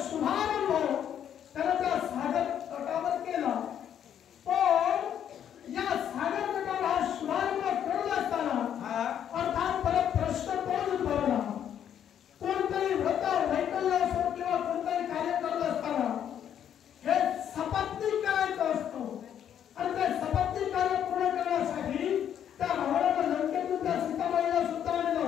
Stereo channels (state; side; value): quieter; right; 9.5 dB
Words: शुभारंभ त्याने त्या सागर तटावर केला. पण या सागर तटावर हा शुभारंभ करत असताना अर्थात परत प्रश्न तोच उद्भवला. कोणतरी व्रत वैकल्य असो किंवा कोणतरी कार्य करत असताना हे सपत्नीक करायचं असतं आणि ते सपत्नीक कार्य पूर्ण करण्यासाठी त्या रावणानं लंकेतून त्या सीतामाईला सुद्धा आणलं